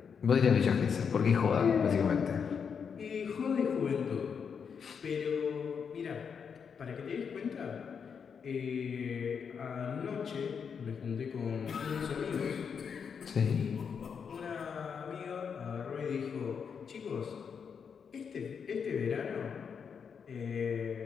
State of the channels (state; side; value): quieter; right; 6.6 dB